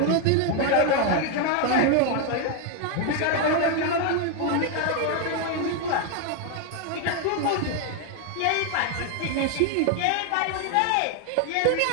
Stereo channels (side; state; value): both; different; correlation 0.01